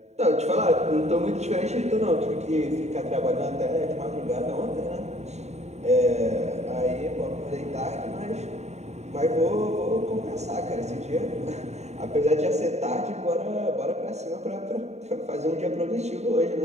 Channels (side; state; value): left; late; 0.32 ms